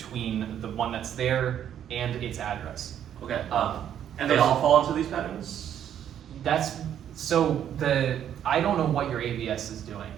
the one that's there and its address. Okay. And they all fall into these patterns? That's so I don't know what your ABS is doing,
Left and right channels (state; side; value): quieter; left; 9.9 dB